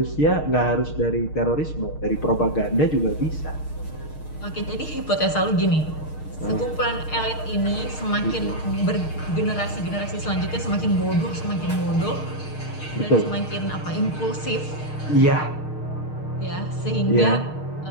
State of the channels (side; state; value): right; late; 6.5 ms